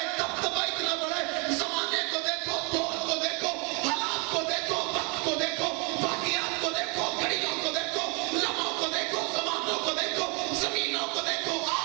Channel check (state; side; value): quieter; left; 32.5 dB